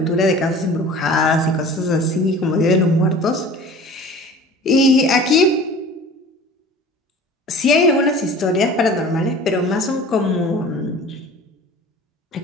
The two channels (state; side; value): normal; both; correlation 0.42